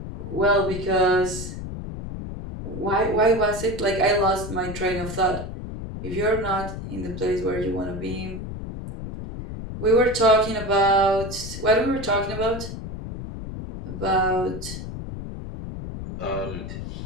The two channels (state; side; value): noise; left; rumble, 8 dB below the sound